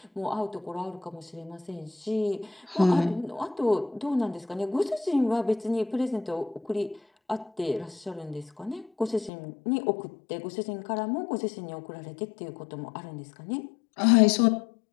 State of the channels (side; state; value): right; drops out; at 9.3 s